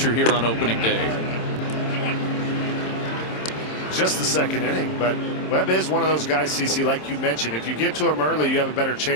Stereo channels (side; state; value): right; late; 27 ms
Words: here on opening day. Just the second inning, but Webb is one of those guys, CC, like you mentioned. If you get to him early, you have a better